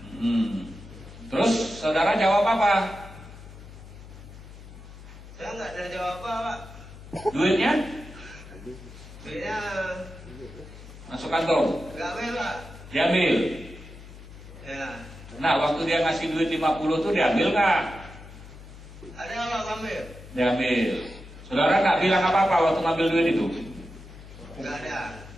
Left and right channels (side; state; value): left; noise; hum, 16 dB below the sound